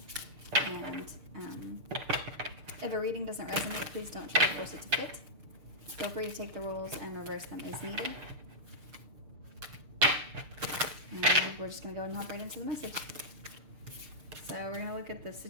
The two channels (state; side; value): late; left; 6.7 ms